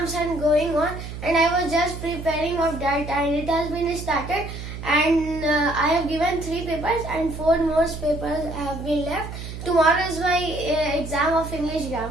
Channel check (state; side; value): noise; right; hum, 9 dB below the sound